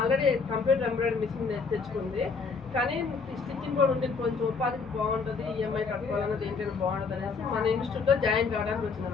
కంప్యూటర్ ఎంబ్రాయిడరీ మిషన్ తెచ్చుకుంది, కానీ స్టిచ్చింగ్ కూడా ఉంటే కొంచెం ఉపాధికి బాగుంటుంది, ఈఎంఐ కట్టుకోవాలన్నది ఏంటంటే బాగుంటుంది అనేసి మన ఇన్స్టిట్యూట్లో జాయిన్ కావడానికి వచ్చింది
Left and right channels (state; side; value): quieter; right; 4.9 dB